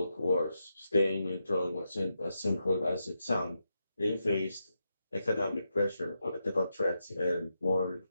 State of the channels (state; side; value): inverted; both; correlation -0.85